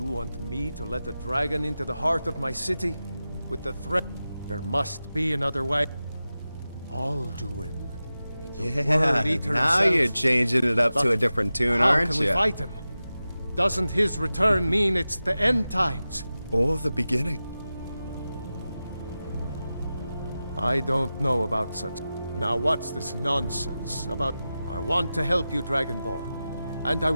want me to let a dragon into the heart of my city? With the threat? There must be another way. Alduin. Yeah, now you're changing it up to a different tune, aren't you? How can we fight him? Doesn't his return mean it's the end times? Or the beginning? I don't know about such. Now what's this nonsense about? I want to help you, Dragonborn. And I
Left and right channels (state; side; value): inverted; both; correlation -0.94